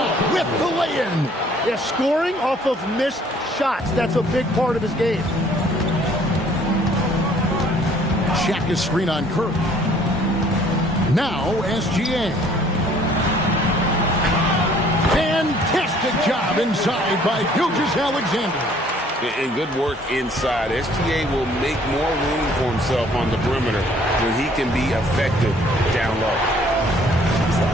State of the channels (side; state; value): both; normal; correlation 0.58